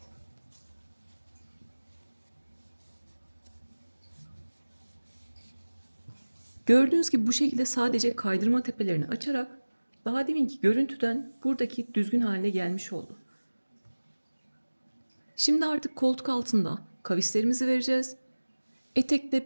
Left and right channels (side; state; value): both; inverted; correlation -1.00